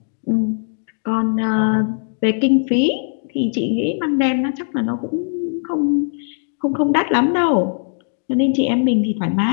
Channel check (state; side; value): silent; right; digital silence